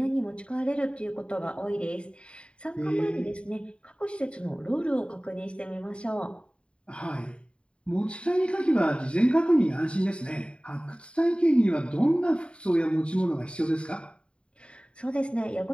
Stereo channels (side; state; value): right; late; 0.056 ms